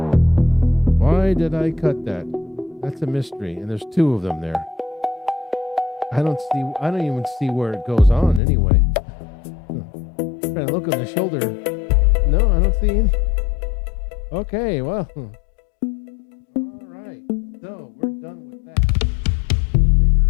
Why did I cut that? That's a mystery, and there's 2 of them there. I don't even see where it goes on anyway. I'm trying to look on the shoulder. No, I don't see any. Okay, well. All right. So we're done with that.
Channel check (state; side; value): drops out; right; at 8.4 s